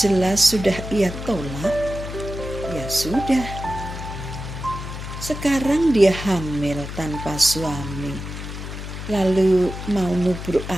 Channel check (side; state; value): left; noise; hum, 8 dB below the sound